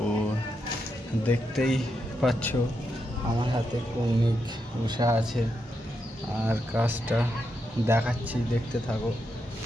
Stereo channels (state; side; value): normal; both; correlation 0.83